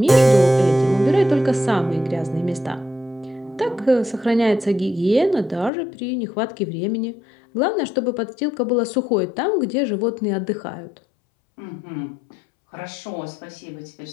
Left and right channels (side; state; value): right; drops out; at 5.7 s